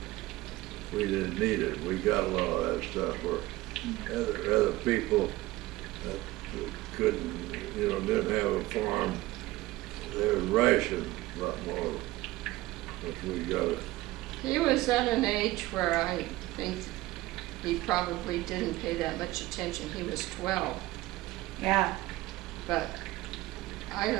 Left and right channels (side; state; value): left; quieter; 18.4 dB